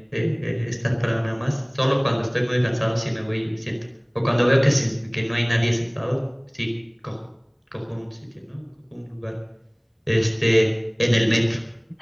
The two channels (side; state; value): both; identical; correlation 1.00